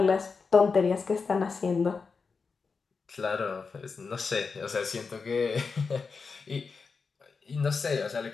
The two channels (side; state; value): right; quieter; 4.9 dB